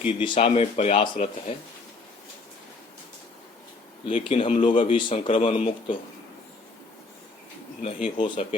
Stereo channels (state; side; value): quieter; right; 3.7 dB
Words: दिशा में प्रयासरत है, लेकिन हम लोग अभी संक्रमण मुक्त नहीं हो